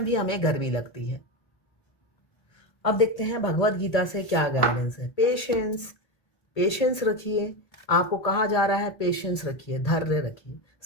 भी हमें गर्मी लगती है। अब देखते हैं भगवत गीता से क्या गाइडेंस है। पेशेंस, पेशेंस रखिए। आपको कहा जा रहा है पेशेंस रखिए, धैर्य रखिए,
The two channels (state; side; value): late; right; 1.8 ms